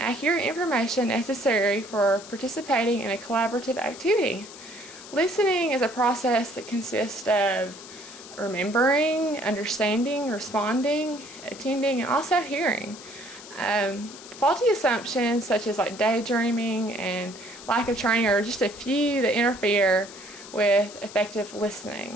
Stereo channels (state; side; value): noise; left; hiss, 16 dB below the sound